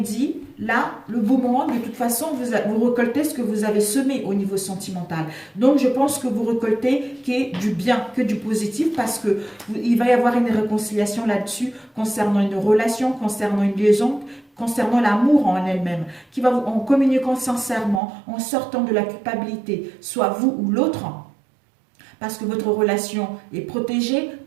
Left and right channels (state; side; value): drops out; left; at 18.0 s